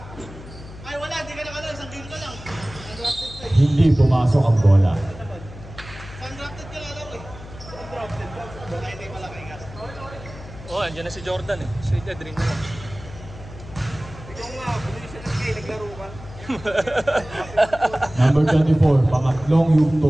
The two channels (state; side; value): noise; left; hum, 15 dB below the sound